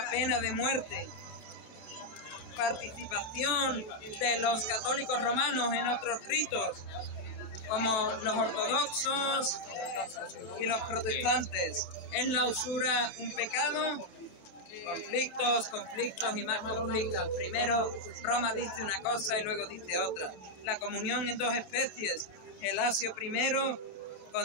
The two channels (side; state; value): right; late; 27 ms